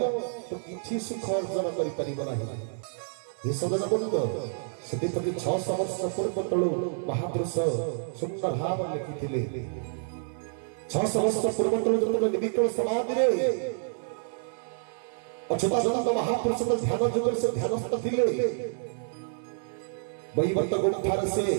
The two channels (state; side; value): silent; left; digital silence